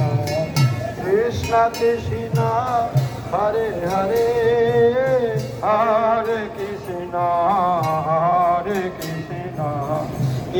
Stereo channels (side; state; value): both; identical; correlation 1.00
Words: কৃষ্ণ কৃষ্ণ হরে হরে হরে কৃষ্ণ হরে কৃষ্ণ